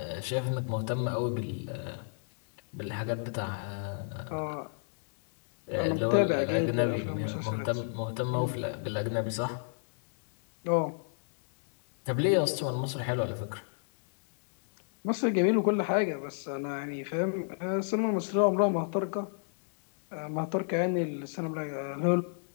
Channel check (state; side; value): silent; right; digital silence